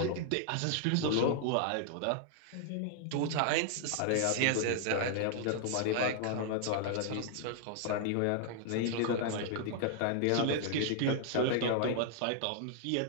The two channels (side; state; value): both; different; correlation 0.00